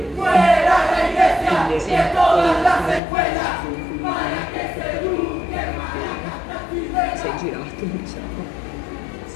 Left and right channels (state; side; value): drops out; right; at 3.0 s